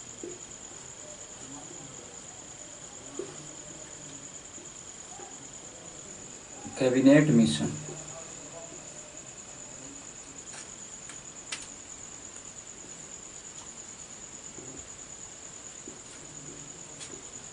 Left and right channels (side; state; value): both; identical; correlation 1.00